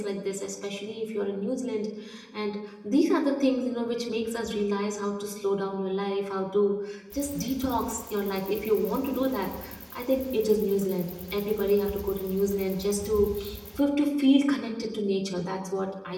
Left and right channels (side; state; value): both; identical; correlation 1.00